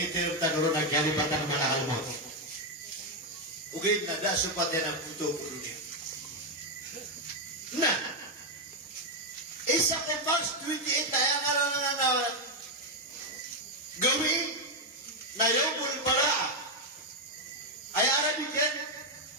tinong tanuro, nagkalipatan ng mga almo. Ugay na dasupat yan ang puto po dunia. Na, isa kay March 28 na yung na gawin na Yawmul Baraa. Ay Arabic yan,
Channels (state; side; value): normal; both; correlation 0.03